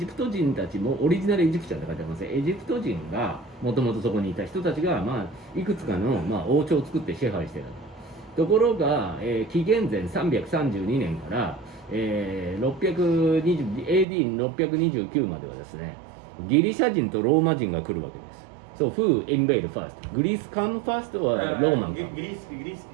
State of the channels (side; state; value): left; drops out; at 14.1 s